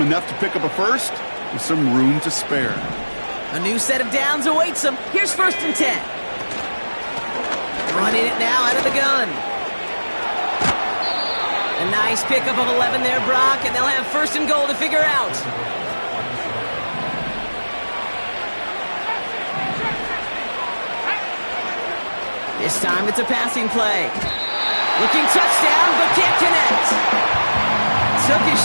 enough to pick up a first with some room to spare. A new set of downs awaits him. Here's 1st and 10. Running it now out of the gun. A nice pickup of 11 there, Brock, and they'll have 1st and goal to figure out. This time it's a passing play. Looking touchdown, but can't connect. Took his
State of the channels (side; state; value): both; inverted; correlation -1.00